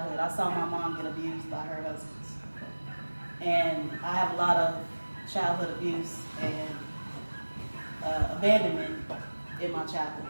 I saw my mom get abused by her husbands. And I have a lot of childhood abuse and abandonment in my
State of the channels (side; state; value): both; inverted; correlation -1.00